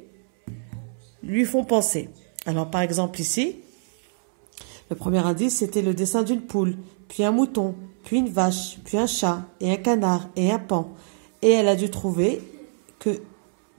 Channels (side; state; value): left; silent; 62 dB below the other